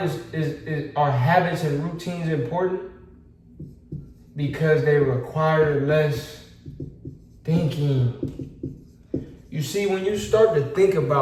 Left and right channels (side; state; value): both; identical; correlation 1.00